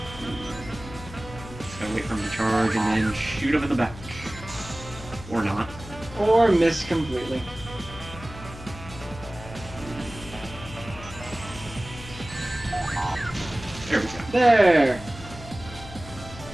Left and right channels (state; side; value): noise; left; hum, 14 dB below the sound